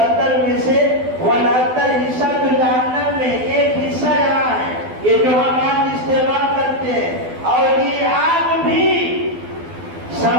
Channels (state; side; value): late; left; 12 ms